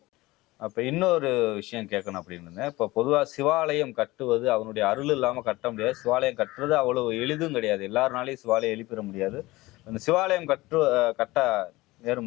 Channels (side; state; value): right; quieter; 19.8 dB